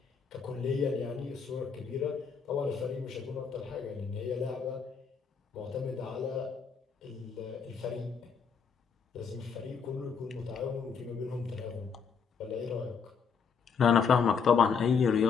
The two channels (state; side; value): quieter; right; 6.1 dB